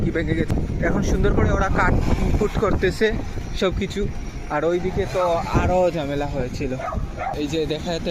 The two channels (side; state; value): both; identical; correlation 1.00